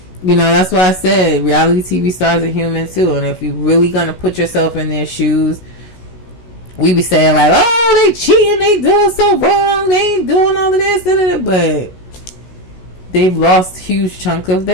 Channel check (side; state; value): right; late; 16 ms